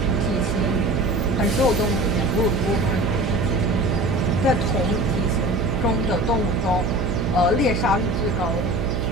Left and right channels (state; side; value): noise; right; hum, 1 dB below the sound